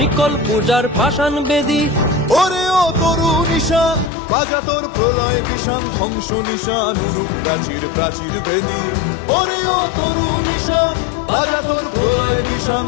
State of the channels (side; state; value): right; drops out; at 4.1 s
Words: পূজার পাষাণ বেদী। ওরে ও তরু নিশান বাজা তোর প্রলয় বিষান, ধ্বংস নিশান উরুপ প্রাচীর প্রাচীর ভেদী। ওরে ও তরু নিশান বাজা তোর প্রলয় নিশান,